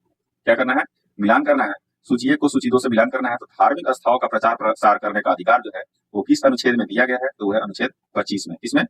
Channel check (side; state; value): both; identical; correlation 1.00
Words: क्या करना है? मिलान करना है। सूची 1 को सूची 2 से मिलान करना है। तो धार्मिक आस्थाओं का प्रचार प्रसार करने का अधिकार जो है वो किस अनुच्छेद में दिया गया है? तो वो है अनुच्छेद 25 में। किसमें?